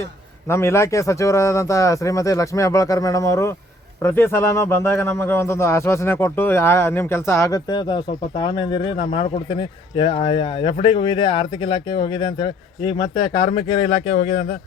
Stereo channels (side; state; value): both; normal; correlation 0.60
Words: ನಮ್ಮ ಇಲಾಖೆ ಸಚಿವರಾದಂಥ ಶ್ರೀಮತಿ ಲಕ್ಷ್ಮೀ ಹೆಬ್ಬಾಳ್ಕರ್ ಮೇಡಮ್ ಅವರು ಪ್ರತಿ ಸಲನೂ ಬಂದಾಗ ನಮಗೆ ಒಂದೊಂದು ಆಶ್ವಾಸನೆ ಕೊಟ್ಟು ನಿಮ್ಮ ಕೆಲಸ ಆಗುತ್ತೆ, ಸ್ವಲ್ಪ ತಾಳ್ಮೆಯಿಂದಿರಿ, ನಾನು ಮಾಡಿಕೊಡ್ತೀನಿ. FDಗೆ ಹೋಗಿದೆ, ಆರ್ಥಿಕ ಇಲಾಖೆಗೆ ಹೋಗಿದೆ ಅಂತೇಳಿ, ಈಗ ಮತ್ತೆ ಕಾರ್ಮಿಕರ ಇಲಾಖೆ ಹೋಗಿದೆ ಅಂತ.